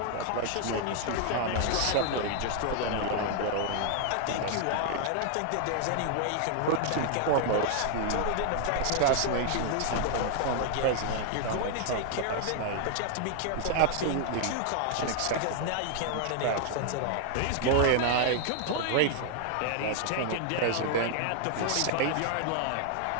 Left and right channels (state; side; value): different; both; correlation 0.00